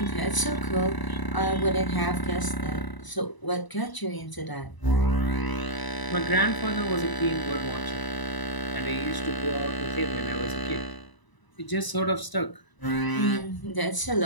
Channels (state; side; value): late; right; 1.0 ms